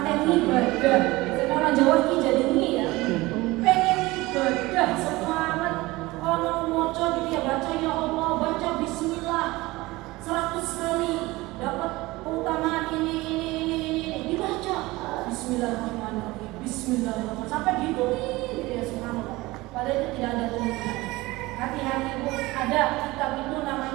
ibadah, biasanya orang Jawa ini jadi ini ya, pengen ibadah semangat. Ono moco gitu ya, baca ya Allah, baca bismillah 100 kali, dapat keutamaan ini dibaca Bismillahirrahmanirrahim, Bismillahirrahmanirrahim sampai gitu ya subhanallah. Padahal itu tidak ada tuntunan. Hati-hati Bu, ada kitab itu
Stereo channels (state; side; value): quieter; left; 20.5 dB